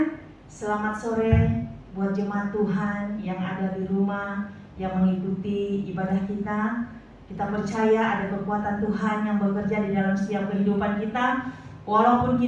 selamat sore buat jemaat Tuhan yang ada di rumah, yang mengikuti ibadah kita. Kita percaya ada kekuatan Tuhan yang bekerja di dalam setiap kehidupan kita. Walaupun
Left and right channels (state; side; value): identical; both; correlation 1.00